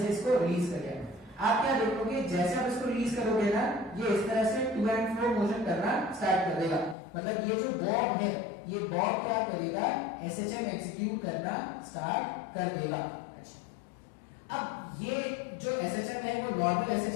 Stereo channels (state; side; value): drops out; right; at 7.0 s